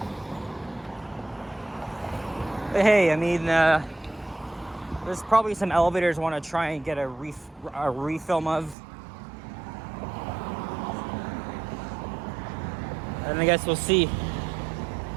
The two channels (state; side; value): drops out; left; at 8.8 s